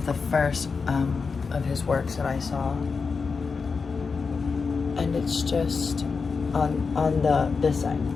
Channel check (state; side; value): quieter; right; 5.0 dB